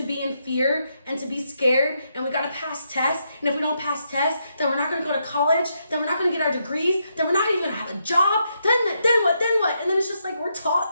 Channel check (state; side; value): inverted; both; correlation -0.79